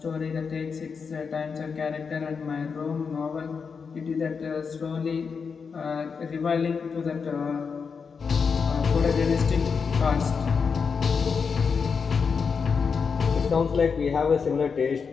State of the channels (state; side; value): quieter; right; 5.7 dB